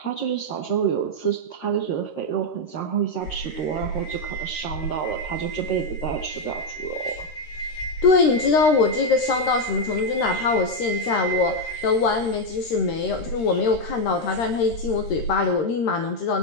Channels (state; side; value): late; right; 13 ms